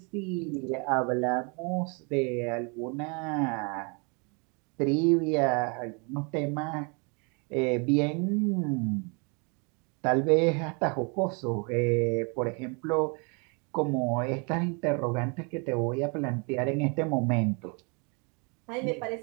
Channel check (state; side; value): quieter; left; 33.4 dB